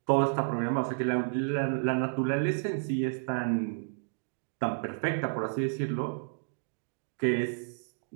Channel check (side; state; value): left; silent; digital silence